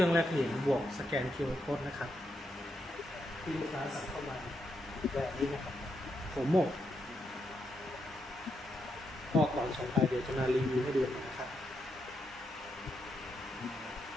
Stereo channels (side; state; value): both; normal; correlation 0.81